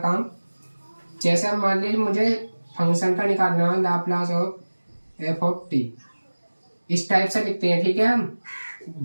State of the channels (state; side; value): inverted; both; correlation -1.00